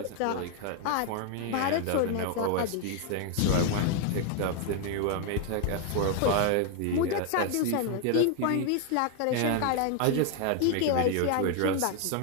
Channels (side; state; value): both; different; correlation 0.00